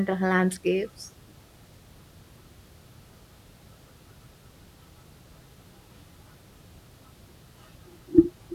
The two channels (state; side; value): identical; both; correlation 1.00